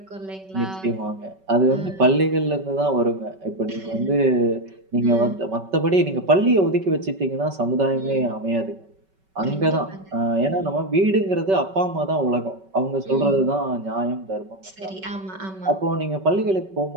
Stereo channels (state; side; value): late; left; 5.3 ms